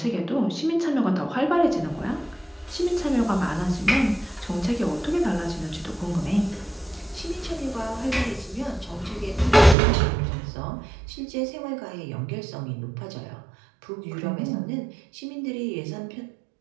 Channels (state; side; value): drops out; left; at 9.8 s